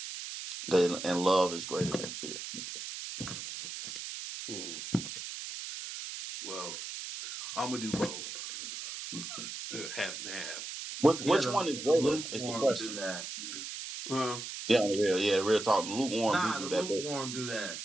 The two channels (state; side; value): noise; right; hiss, 7 dB below the sound